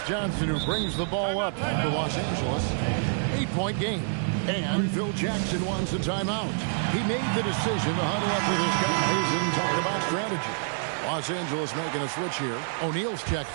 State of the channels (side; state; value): left; silent; digital silence